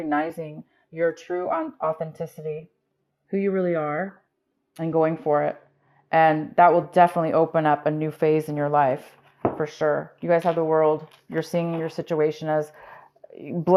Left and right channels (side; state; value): both; identical; correlation 1.00